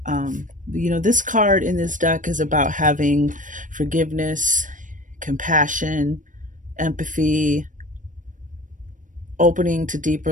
this card in this deck is about having forgiveness, compassion, empathy, opening to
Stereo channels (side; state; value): left; late; 0.38 ms